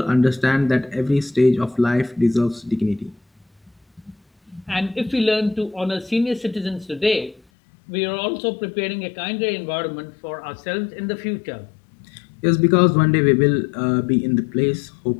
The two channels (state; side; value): drops out; right; at 7.4 s